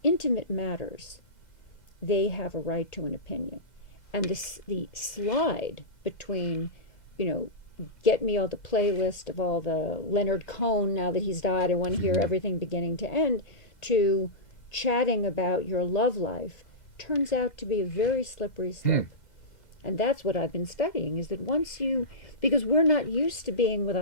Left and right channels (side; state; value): right; late; 2.0 ms